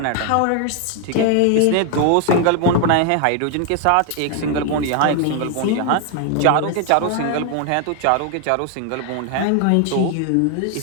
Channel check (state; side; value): different; both; correlation 0.01